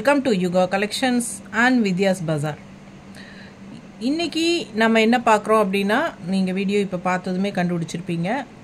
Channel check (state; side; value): identical; both; correlation 1.00